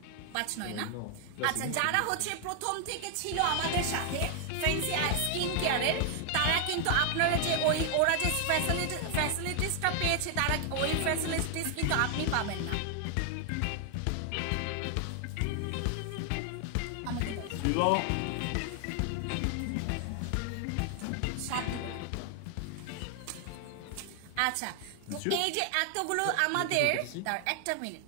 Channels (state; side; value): different; both; correlation 0.00